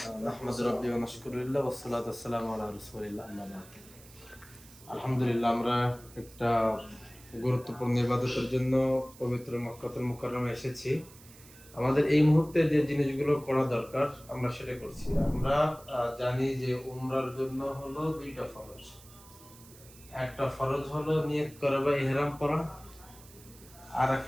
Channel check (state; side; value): noise; right; hiss, 22 dB below the sound